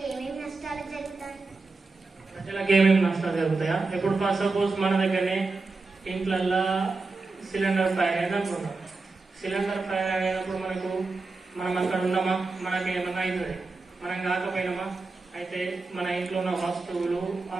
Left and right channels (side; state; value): left; quieter; 3.8 dB